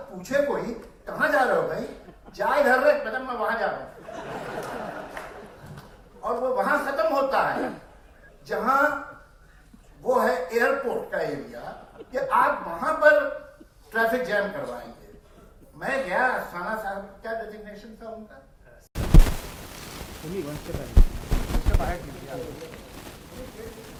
पूछे कोई कहां जा रहे हो भाई, जा इधर रहे, मैडम मैं वहां जा रहा हूं, और वो वहां खत्म होता है। जहां वो है एयरपोर्ट का एरिया, कि आप वहां पर ट्रैफिक जैम करवाएंगे। मैं गया, अस्थाना साहब क्या डेजिग्नेशन था उनका?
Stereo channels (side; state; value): both; identical; correlation 1.00